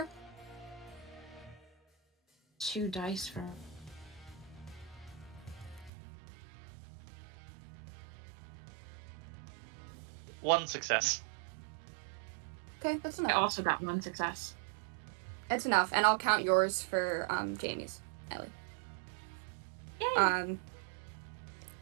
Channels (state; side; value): drops out; left; at 5.9 s